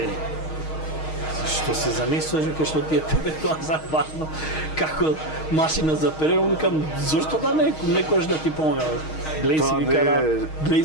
Што се занесуваш, дека што ти е тебе тоа за важно, како машина за перење, викам зошто да некојаш да ти помага. Глеј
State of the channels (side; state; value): right; late; 6.4 ms